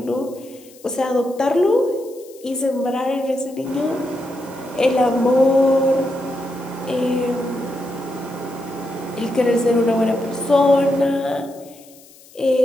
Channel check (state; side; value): noise; left; hiss, 24 dB below the sound